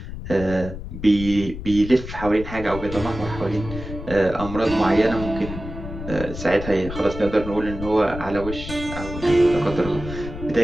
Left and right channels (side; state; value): left; noise; rumble, 10 dB below the sound